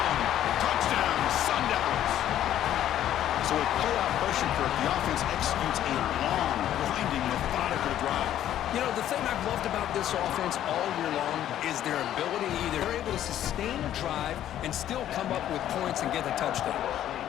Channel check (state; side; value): quieter; right; 11.6 dB